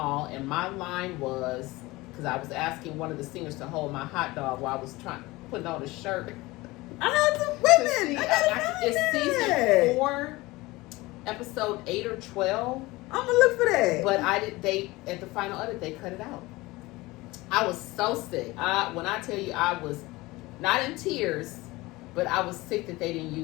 and my line was, because I was asking one of the singers to hold my hot dog while I was putting on a shirt. I have some women. It's season 4, episode 8 or 12. I'm gonna look for that. But at the final edit, they cut it out. I was so sick. When I tell you, I was not in tears, but I was sick that they didn't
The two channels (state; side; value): quieter; right; 20.8 dB